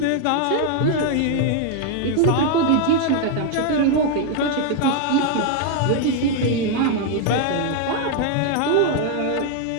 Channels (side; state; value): both; different; correlation 0.00